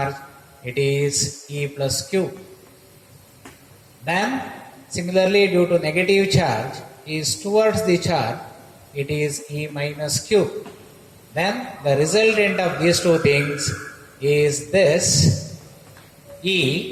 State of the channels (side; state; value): both; identical; correlation 1.00